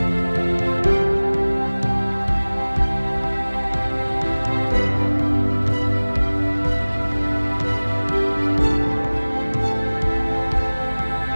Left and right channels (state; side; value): inverted; both; correlation -1.00